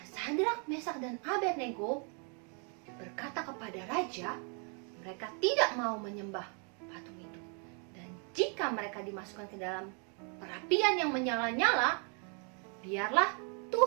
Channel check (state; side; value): quieter; left; 38.9 dB